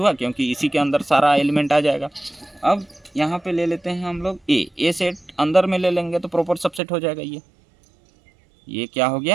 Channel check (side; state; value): left; drops out; at 6.8 s